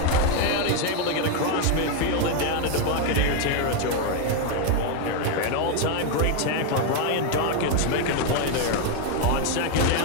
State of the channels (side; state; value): both; different; correlation 0.01